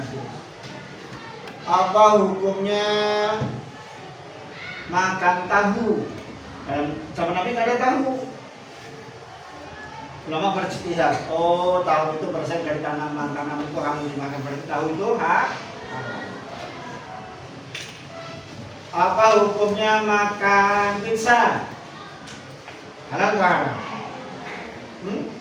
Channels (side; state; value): both; identical; correlation 1.00